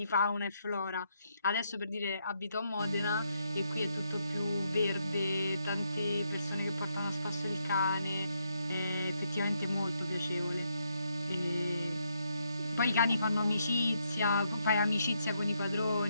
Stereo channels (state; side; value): inverted; both; correlation -0.77